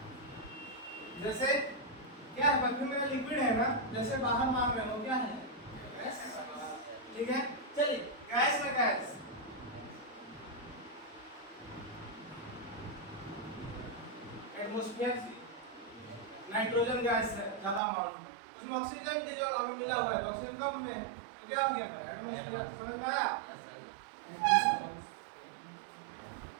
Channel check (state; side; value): drops out; left; at 17.8 s